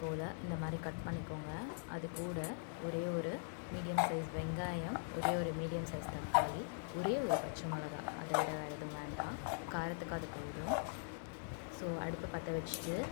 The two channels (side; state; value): right; silent; digital silence